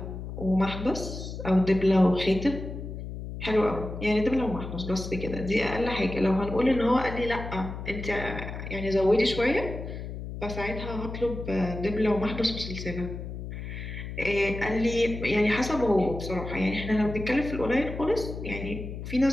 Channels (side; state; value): left; noise; hum, 8 dB below the sound